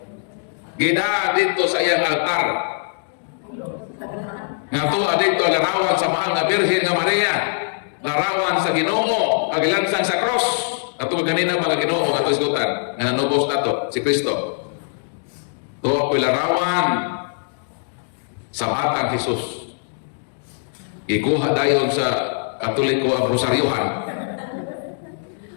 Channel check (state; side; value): silent; right; digital silence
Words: Gida dito sa iyang altar. Nga tuwa dito larawan sa mahal na Birhen nga Maria, larawan sa Ginoo, agilansang sa cross. Ato ganina mga Ginoo ato isgutan nga nanubos nato si Kristo. Tuwa ko'y larawan sa batang Jesus. Ikuha dayon sa Katoliko ang rosaryohan.